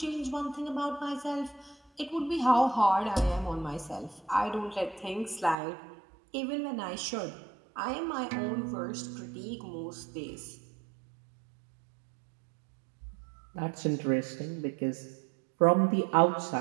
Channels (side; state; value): left; drops out; at 5.6 s